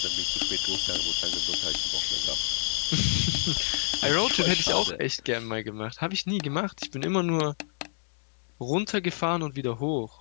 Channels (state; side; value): silent; right; 59 dB below the other